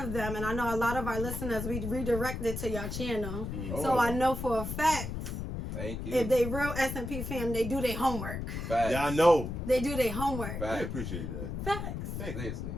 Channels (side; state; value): left; noise; rumble, 5 dB below the sound